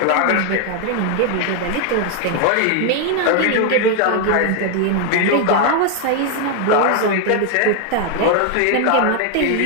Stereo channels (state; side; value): different; both; correlation 0.01